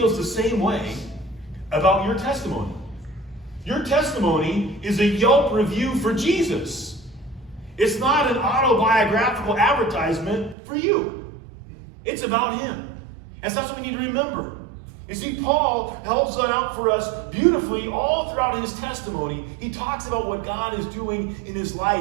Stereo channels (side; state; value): left; drops out; at 10.6 s